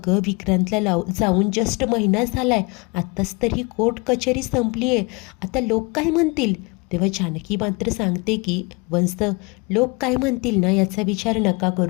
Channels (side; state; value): right; quieter; 28.5 dB